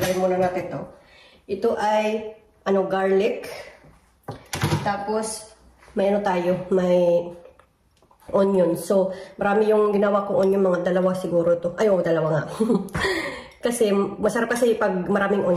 muna natin ito. Ito ay, garlic. Tapos, may onion. So, marami yung ginawa kong onion, mga dalawa siguro ito. Ay, dalawa nga. Kasi, masarap kasi pag maraming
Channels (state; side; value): identical; both; correlation 1.00